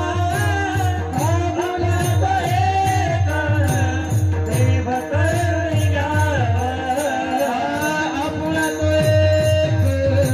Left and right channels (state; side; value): identical; both; correlation 1.00